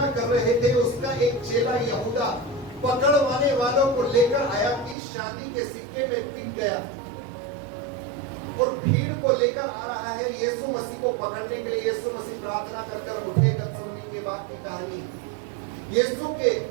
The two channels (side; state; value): left; drops out; at 5.0 s